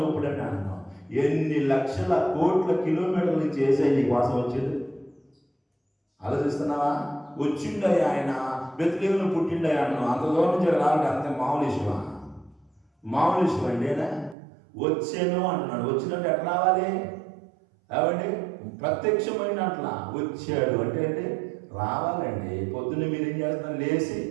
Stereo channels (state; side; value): drops out; left; at 14.4 s